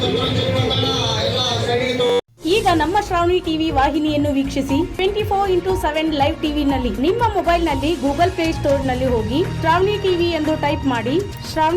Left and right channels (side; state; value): both; identical; correlation 1.00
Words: ಎಲ್ಲ ಸೈಡಿಗೆ ಈಗ ನಮ್ಮ ಶ್ರಾವಣಿ ಟಿವಿ ವಾಹಿನಿಯನ್ನು ವೀಕ್ಷಿಸಿ 24x7 ಲೈವ್ ಟಿವಿನಲ್ಲಿ ನಿಮ್ಮ ಮೊಬೈಲ್ನಲ್ಲಿ ಗೂಗಲ್ ಪ್ಲೇ ಸ್ಟೋರ್ನಲ್ಲಿ ಹೋಗಿ ಶ್ರಾವಣಿ ಟಿವಿ ಎಂದು ಟೈಪ್ ಮಾಡಿ